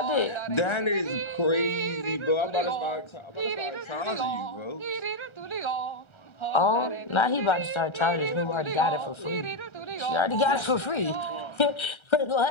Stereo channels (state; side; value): late; right; 1.3 ms